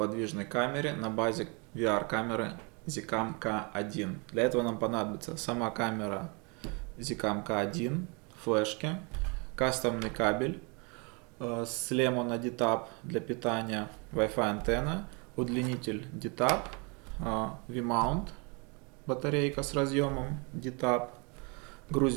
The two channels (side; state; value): left; quieter; 32.2 dB